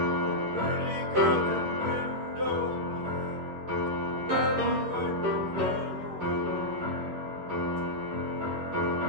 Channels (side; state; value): left; late; 11 ms